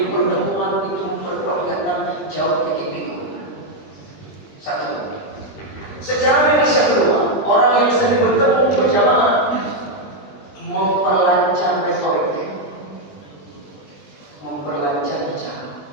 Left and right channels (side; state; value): right; late; 20 ms